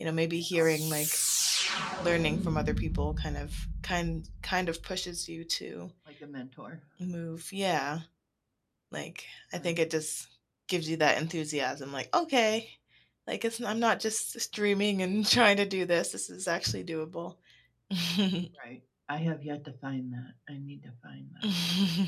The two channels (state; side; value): identical; both; correlation 1.00